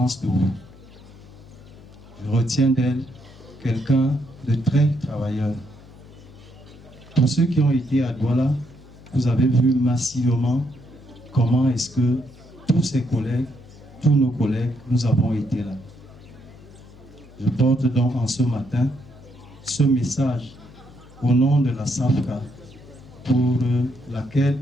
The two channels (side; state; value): left; noise; hum, 21 dB below the sound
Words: de vous. Je retiens d'elle quelqu'un de très travailleur. Pour ceux qui ont été à Douala, vous avez vu massivement comment est-ce que tous ses collègues, tous nos collègues, nous avons été là. Je porte donc en ce matin ce message au nom de la SAFCA pour laquelle